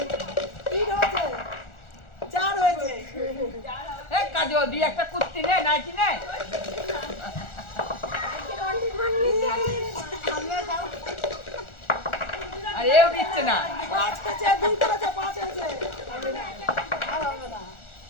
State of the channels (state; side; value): late; right; 1.4 ms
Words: তিন হয়েছে, চার হয়েছে, এ কাজল, দিয়ে একটা কুর্তি নে, নাইটি নে। আর এও দিচ্ছে না। 5 হয়েছে, 2 করেছে, 5 হয়েছে। আর হবে না